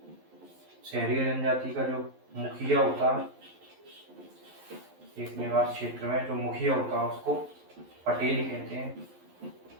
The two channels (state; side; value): late; left; 11 ms